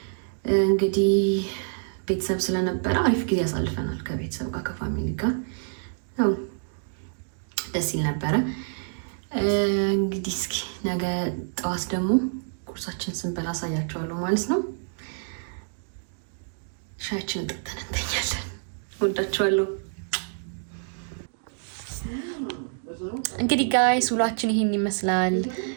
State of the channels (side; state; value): left; silent; digital silence